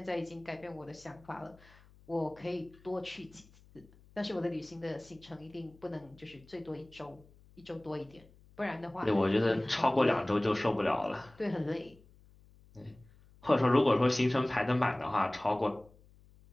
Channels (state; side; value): noise; left; hum, 26 dB below the sound